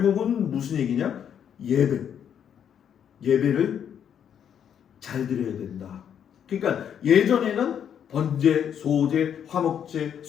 무슨 얘기냐? 예배를 잘 드려야 된다. 그러니까 예전에는 번제, 소제, 화목제,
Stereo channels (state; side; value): quieter; right; 8.7 dB